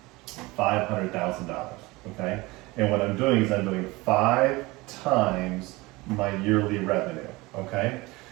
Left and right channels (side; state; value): left; quieter; 22.2 dB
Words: $500,000, okay? And what I'm doing is I'm doing 5 times my yearly revenue, okay?